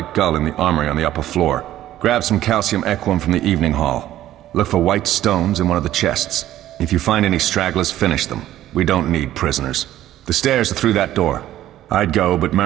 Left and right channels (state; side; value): quieter; left; 13.3 dB